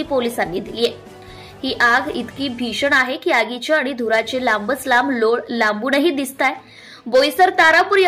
पोलिसांनी दिली आहे। ही आग इतकी भीषण आहे की आगीचे आणि धुराचे लांबच लांब लोळ लांबूनही दिसताय। बोईसर तारापूर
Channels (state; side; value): identical; both; correlation 1.00